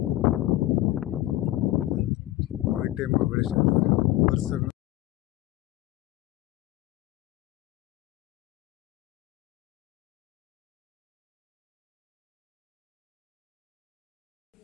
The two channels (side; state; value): right; quieter; 16.2 dB